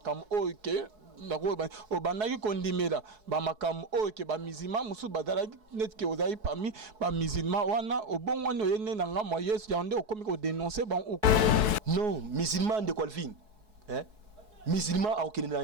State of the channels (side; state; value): left; late; 4.7 ms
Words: OK au banaki kondimela ba makam OK ba musulman musu badala net que ozai parmi ba musulman wana au bon wana oyene na ngamo Yesu ya ndé au komi ko dénoncer ban non musulman de Colvin hein musulman a aucun